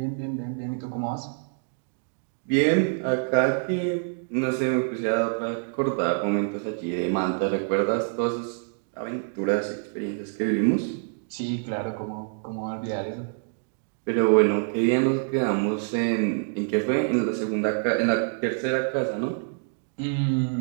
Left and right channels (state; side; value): silent; left; digital silence